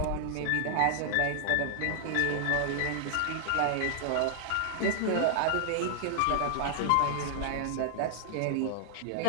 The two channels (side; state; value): both; different; correlation -0.01